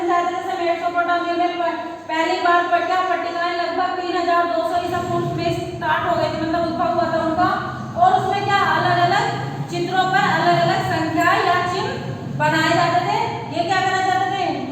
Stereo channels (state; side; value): identical; both; correlation 1.00